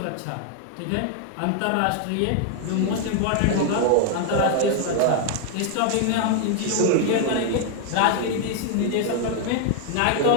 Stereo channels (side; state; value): both; different; correlation 0.00